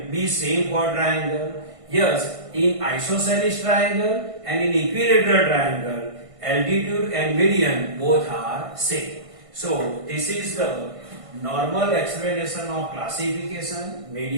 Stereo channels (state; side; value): late; left; 1.5 ms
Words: be same for triangle? Yes, in isosceles triangle and in equilateral triangle, altitude and median both are same. So, this is the normal explanation of classification,